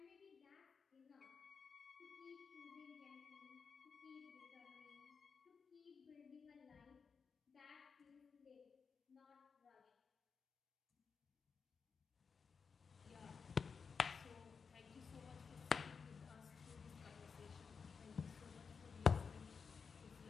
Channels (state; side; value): quieter; right; 5.6 dB